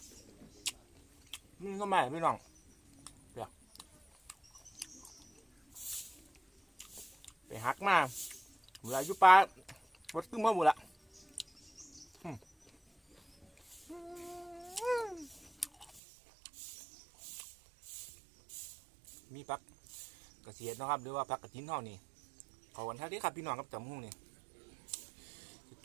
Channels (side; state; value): left; drops out; at 16.0 s